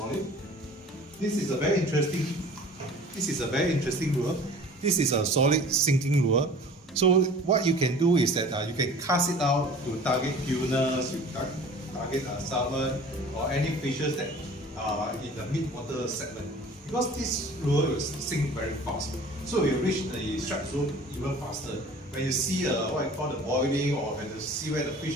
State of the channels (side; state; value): both; normal; correlation 0.45